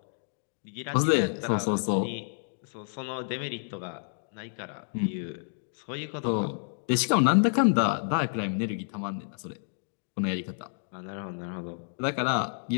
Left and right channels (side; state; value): right; silent; digital silence